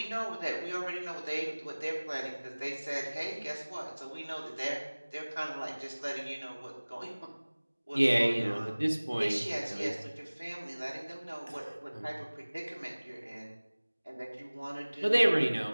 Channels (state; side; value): inverted; both; correlation -1.00